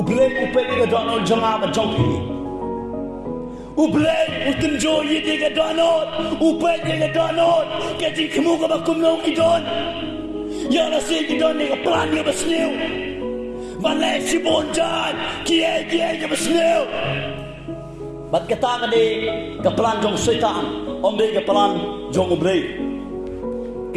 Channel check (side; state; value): both; identical; correlation 1.00